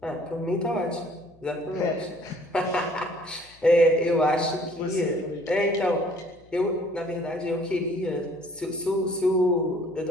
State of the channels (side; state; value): left; noise; hum, 28 dB below the sound